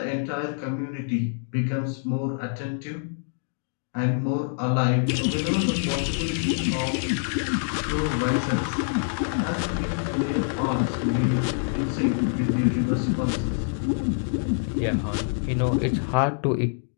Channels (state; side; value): silent; right; digital silence